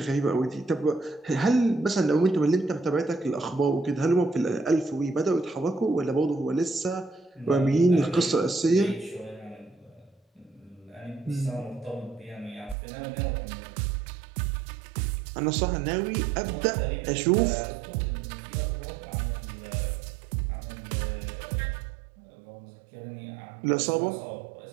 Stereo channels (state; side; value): drops out; left; at 12.8 s